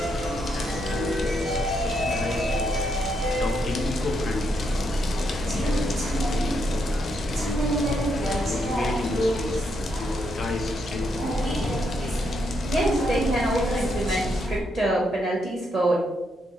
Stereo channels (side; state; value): both; normal; correlation 0.78